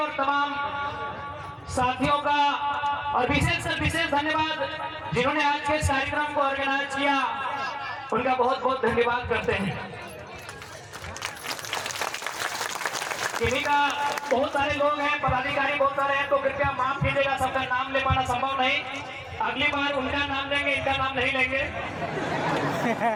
तमाम साथियों का और विशेष धन्यवाद जिन्होंने आज के इस कार्यक्रम को ऑर्गेनाइज किया, उनका बहुत बहुत धन्यवाद करते हैं। इन्हीं का बहुत सारे लोग हैं, पदाधिकारी बहुत सारे हैं, तो कृपया माफ कीजिएगा, सबका नाम ले पाना संभव नहीं। अगली बार उनका नाम लेंगे, इनका नाम नहीं लेंगे।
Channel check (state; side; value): identical; both; correlation 1.00